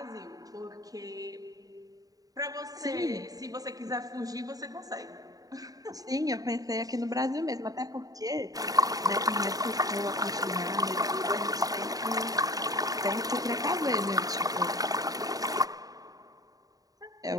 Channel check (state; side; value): late; left; 0.18 ms